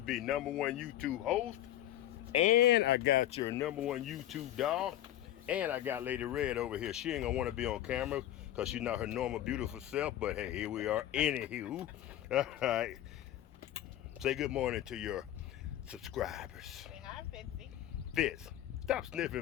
#1 YouTube host, and I got your #1 YouTube dog, and I got Lady Red over here. She ain't gonna want to be on camera because she's not her normal beautiful self, but hey, here we are. Anywho, all right. Say good morning to your subscribers. Say hi, Fitzy. Fitz, stop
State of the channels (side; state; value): right; quieter; 12.9 dB